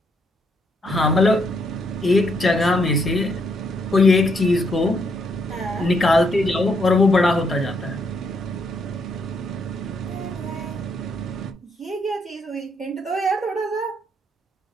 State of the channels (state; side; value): normal; both; correlation 0.74